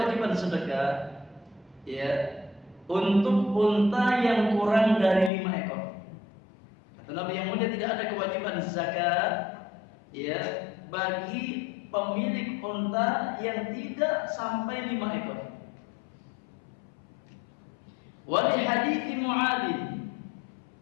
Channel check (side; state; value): right; drops out; at 5.3 s